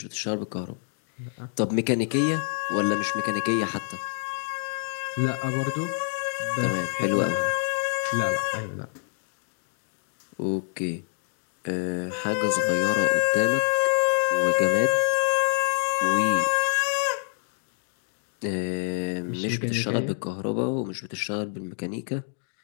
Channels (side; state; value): right; silent; digital silence